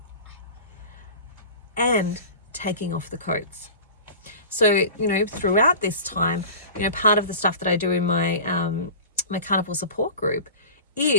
and taking off the coats. So, you know, throughout this time, you know, part of the stuff that I do in my my carnivore support group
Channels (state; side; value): inverted; both; correlation -0.37